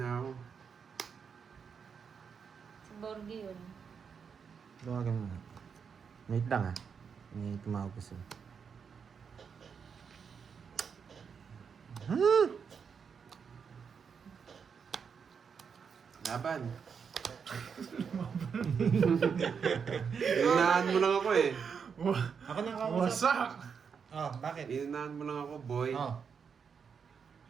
ako. Si Borgie yun. Tawagan mo. Wait lang ah. May tumawag ko sa'yo. Laban. Inunahan mo lang ako eh. Ako nang kausap. Wasak! Oh, bakit? Inunahan mo lang ako, boy. Oh.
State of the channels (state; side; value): quieter; left; 6.4 dB